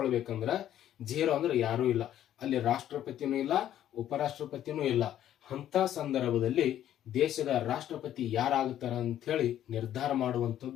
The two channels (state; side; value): quieter; right; 11.5 dB